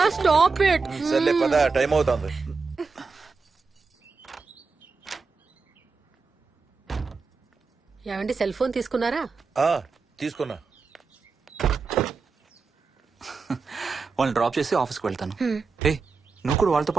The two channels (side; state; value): left; quieter; 4.6 dB